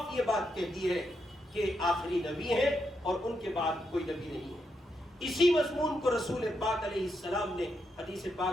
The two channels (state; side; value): normal; both; correlation 0.82